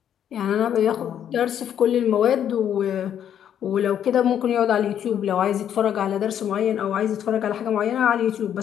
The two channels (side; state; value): right; quieter; 9.6 dB